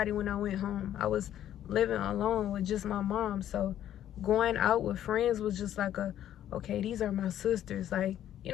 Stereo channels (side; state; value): right; quieter; 11.3 dB